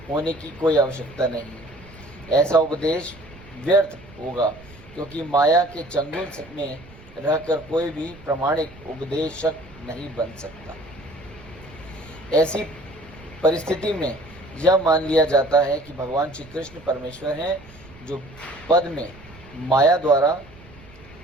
होने की कोई आवश्यकता नहीं है। ऐसा उपदेश व्यर्थ होगा क्योंकि माया के चंगुल में रहकर कोई भी प्रामाणिक उपदेशक नहीं बन सकता। ऐसी परिस्थिति में यह मान लिया जाता है कि भगवान श्री कृष्ण परमेश्वर हैं, जो पद में माया द्वारा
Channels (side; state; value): right; noise; rumble, 21 dB below the sound